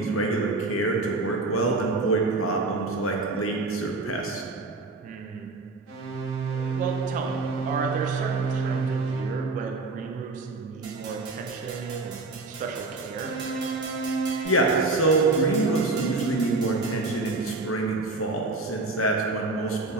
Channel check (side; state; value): left; quieter; 3.3 dB